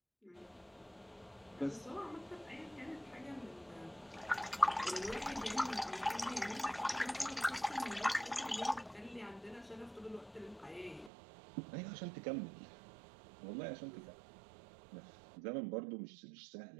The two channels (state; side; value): drops out; left; at 11.1 s